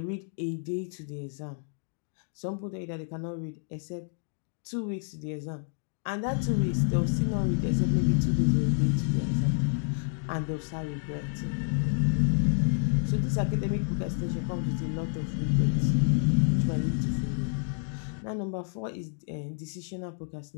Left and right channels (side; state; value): right; silent; 56 dB below the other